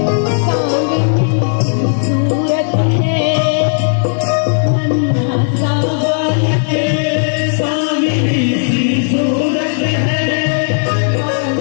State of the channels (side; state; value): right; silent; digital silence